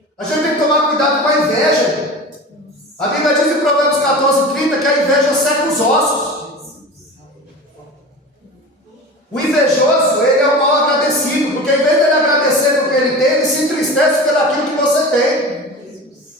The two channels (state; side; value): normal; both; correlation 0.33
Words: A gente tem que tomar cuidado com a inveja. A Bíblia diz em Provérbios 14:30 que a inveja seca os ossos. O invejoso, ele é o mal agradecido, porque em vez de ele agradecer pelo que ele tem, ele se entristece pelo aquilo que você tem.